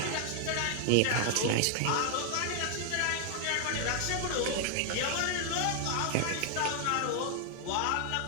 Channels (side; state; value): both; different; correlation 0.00